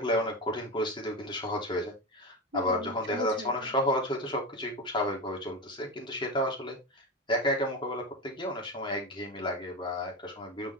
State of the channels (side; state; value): both; normal; correlation 0.20